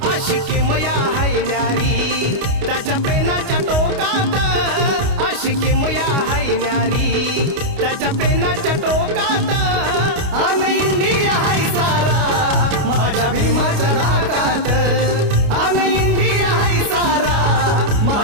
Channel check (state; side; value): late; left; 29 ms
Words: आशिकी मया हाय न्यारी त्याच्या पेनाच्या टोकात, आशिकी मया हाय न्यारी त्याच्या पेनाच्या टोकात. अन इंडिया हाय सारा माझ्या भीमाच्या नाकात, अन इंडिया हाय सारा